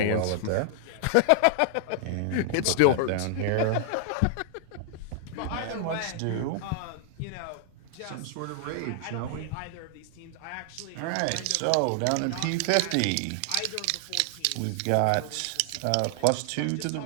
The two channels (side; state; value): both; different; correlation 0.00